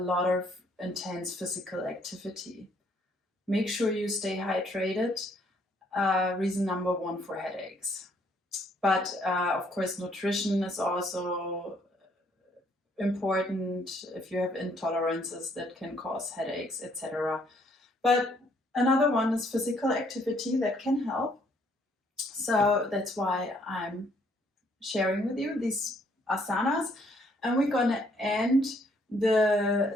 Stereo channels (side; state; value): both; normal; correlation 0.67